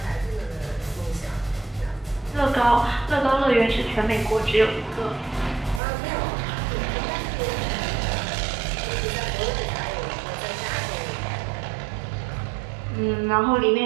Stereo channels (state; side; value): drops out; left; at 5.8 s